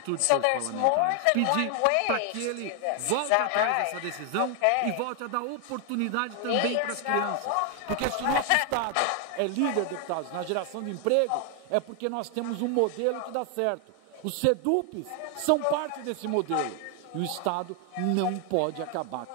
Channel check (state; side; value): different; both; correlation 0.00